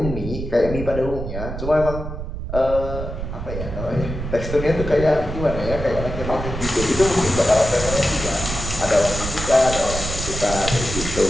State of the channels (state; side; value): noise; right; rumble, 6 dB below the sound